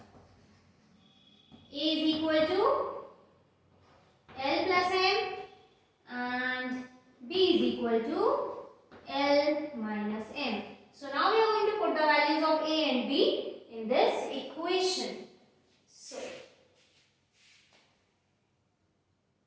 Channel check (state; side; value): identical; both; correlation 1.00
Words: a is equal to L plus m and b is equal to L minus m. So now we are going to put the values of a and b.